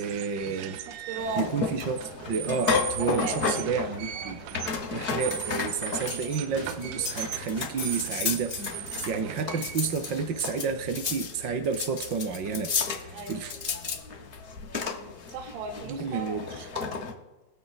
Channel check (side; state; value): left; late; 4.6 ms